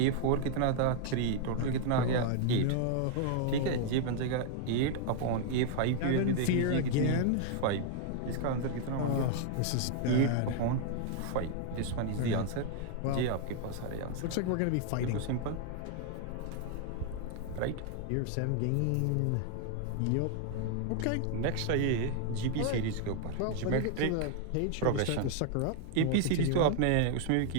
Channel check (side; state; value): both; different; correlation 0.00